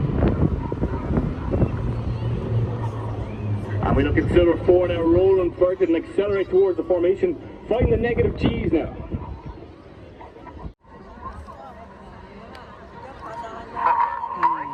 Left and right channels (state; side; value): identical; both; correlation 1.00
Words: 4 now, roll inverted and accelerate towards the formation. Find the negative G's now.